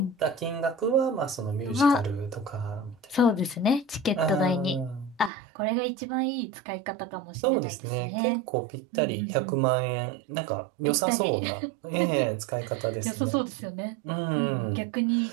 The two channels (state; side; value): drops out; left; at 5.3 s